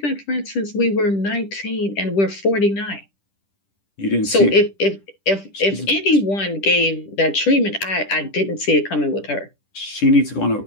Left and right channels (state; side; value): late; right; 10 ms